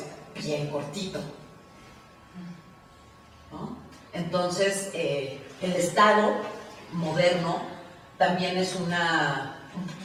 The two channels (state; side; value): identical; both; correlation 1.00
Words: bien cortito, ¿no? Entonces, el Estado moderno también es una